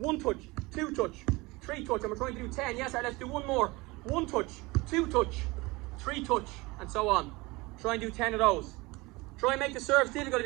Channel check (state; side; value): quieter; left; 23.1 dB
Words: touch, 2 touch, 3 touch. And we're trying to do 10. Yes, Art. Let's do 1 more. 1 touch, 2 touch, 3 touch, and so on. Try and do 10 of those. Try and make the serves difficult. If